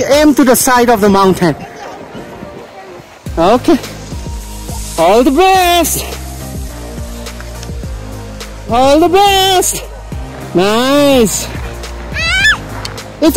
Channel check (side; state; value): both; identical; correlation 1.00